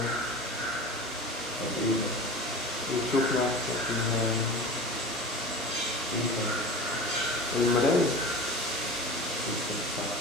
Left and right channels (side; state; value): both; normal; correlation 0.34